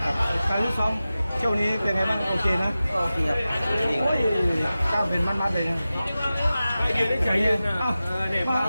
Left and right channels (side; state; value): both; inverted; correlation -0.95